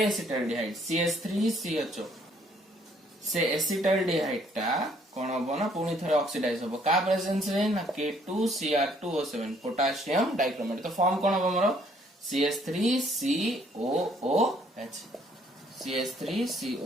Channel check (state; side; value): normal; both; correlation 0.64